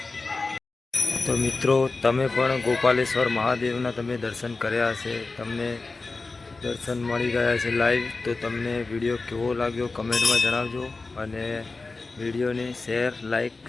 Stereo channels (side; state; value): right; quieter; 3.7 dB